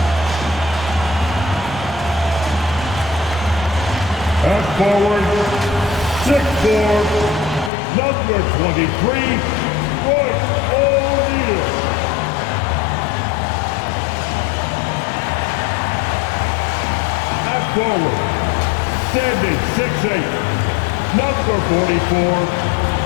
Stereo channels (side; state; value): right; drops out; at 7.7 s